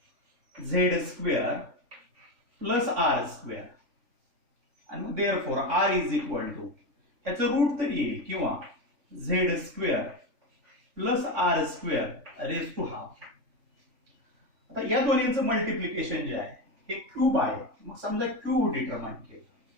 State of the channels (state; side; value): late; left; 3.5 ms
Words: z square plus r square आणि मग therefore r is equal to याचं रूट तरी येईल किंवा z square plus r square raise to half. आता या दोन्हींचं मल्टिप्लिकेशन जे आहे हे क्यूब आहे, मग समजा क्यूब डिटरमाइन केलं,